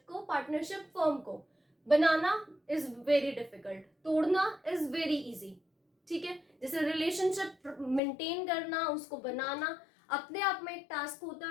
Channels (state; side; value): drops out; right; at 8.0 s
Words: फर्म को बनाना इज वेरी डिफिकल्ट, तोड़ना इज वेरी इजी. ठीक है, जैसे रिलेशनशिप मेंटेन करना, उसको बनाना अपने आप में एक टास्क होता